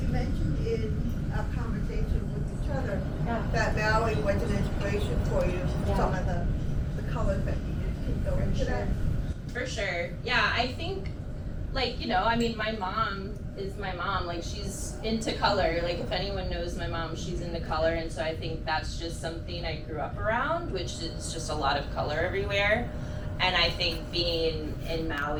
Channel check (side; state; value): both; identical; correlation 1.00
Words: You mentioned in a conversation with each other that Maui was an inspiration for you. Some of the colors that you used can go into that. For sure. Yeah, I think, like, my mom is my mom. Like, she's into color. Like, if anyone knows my mom, she's into color. And so I think that's just something I grew up around, which is just a lot of color everywhere. And I think being in